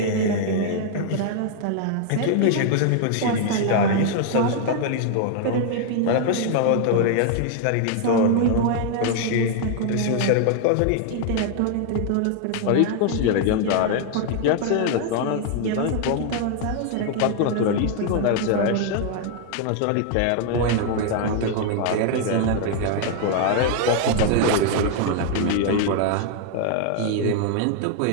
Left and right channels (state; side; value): different; both; correlation 0.00